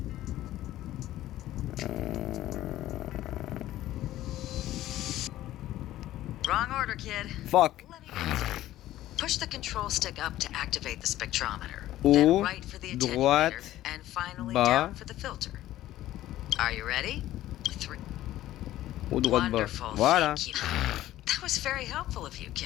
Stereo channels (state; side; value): quieter; right; 14.3 dB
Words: Wrong order, kid. Fuck. Push the control stick up to activate the spectrometer. Haut, Then right for the attenuator, droite, and finally bas. down for the filter. Are you ready? 3. Haut, droite, bas. Wonderful. Voilà. Thank you. That was very helpful of you,